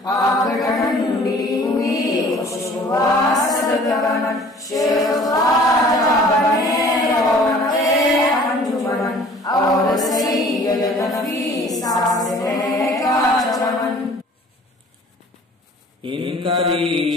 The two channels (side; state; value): both; normal; correlation 0.50